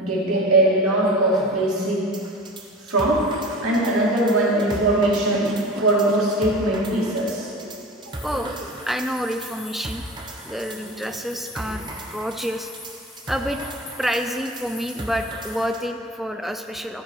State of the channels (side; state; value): both; normal; correlation 0.35